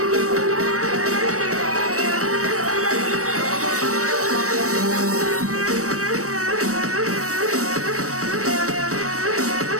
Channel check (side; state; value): left; late; 0.65 ms